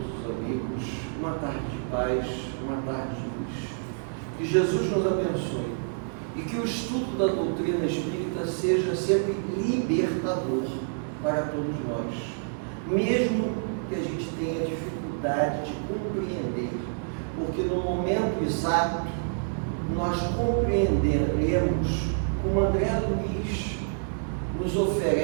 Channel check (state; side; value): silent; left; digital silence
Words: os amigos uma tarde de paz, uma tarde de luz. Que Jesus nos abençoe e que o estudo da doutrina espírita seja sempre libertador para todos nós, mesmo que a gente tenha dificuldade de compreender, porque no momento exato nós compreenderemos como André Luiz nos